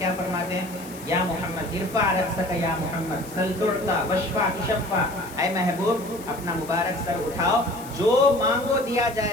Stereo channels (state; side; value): noise; left; hiss, 18 dB below the sound